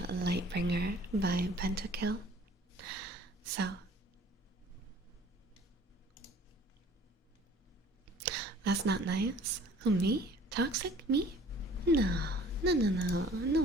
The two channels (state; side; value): normal; both; correlation 0.51